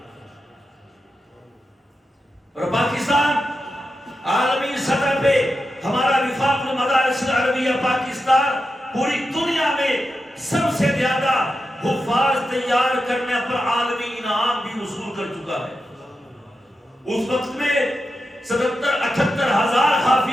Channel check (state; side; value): normal; both; correlation 0.89